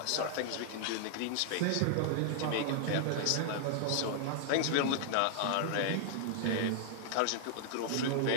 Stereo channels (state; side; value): different; both; correlation -0.01